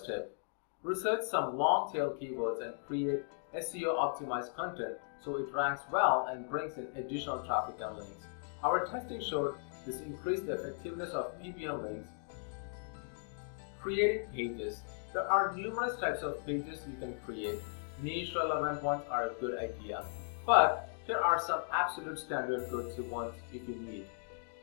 research some long tail keywords and create SEO optimized content so it ranks well and brings in additional traffic and links. Our testing showed this increased the effectiveness of PPL links. Creating pages. There are numerous types of pages you can create. Niche relevant ones are a good idea, but there are some absolute standard go-to ones if you need.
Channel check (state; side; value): silent; right; digital silence